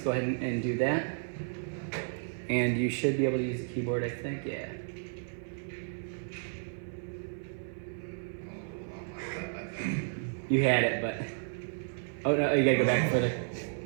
go ahead and do that. And you should be able to use the keyboard, I think, yeah. You had it, but... Oh, no, you gotta go back further.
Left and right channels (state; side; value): silent; left; 56 dB below the other